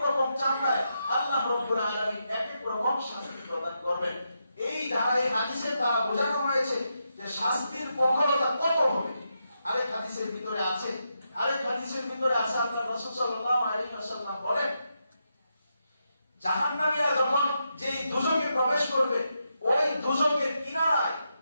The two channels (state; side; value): inverted; both; correlation -0.84